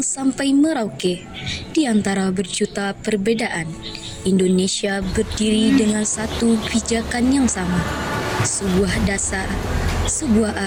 sampai Merauke, di antara berjuta perbedaan, Indonesia berdiri dengan satu pijakan yang sama. Sebuah dasar, sebuah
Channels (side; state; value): both; identical; correlation 1.00